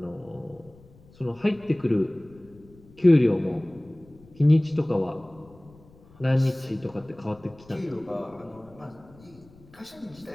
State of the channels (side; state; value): left; noise; rumble, 25 dB below the sound